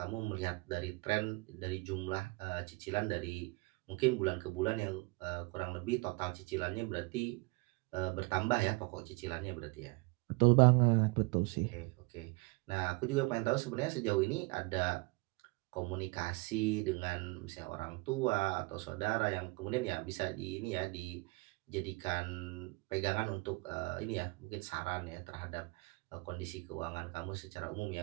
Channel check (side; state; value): left; quieter; 26.4 dB